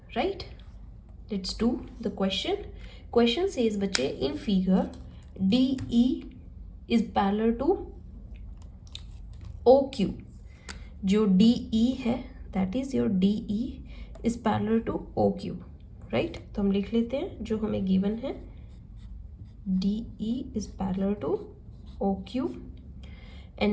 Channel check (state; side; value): identical; both; correlation 1.00